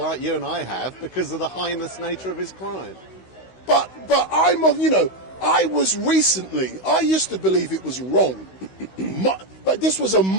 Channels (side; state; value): right; late; 16 ms